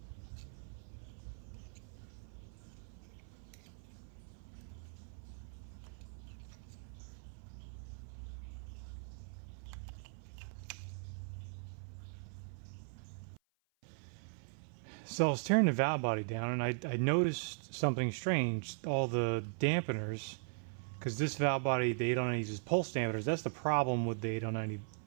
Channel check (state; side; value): silent; left; 52 dB below the other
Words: So I was tearing the valve body down, and I noticed something strange. All the dampeners, because this valve body, the 809 uses pulse dampeners. That's the problem with the 809